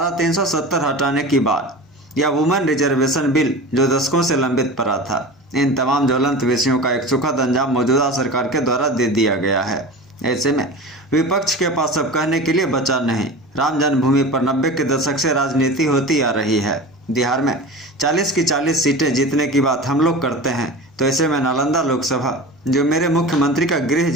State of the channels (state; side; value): normal; both; correlation 0.32